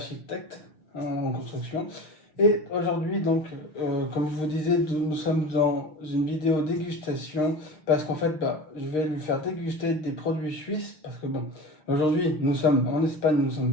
en construction. Et aujourd'hui, donc, comme je vous disais, nous sommes dans une vidéo dégustation parce qu'en fait, bah, je vais lui faire déguster des produits suisses parce que bon, aujourd'hui, nous sommes en Espagne, nous ne sommes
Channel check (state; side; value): late; right; 6.5 ms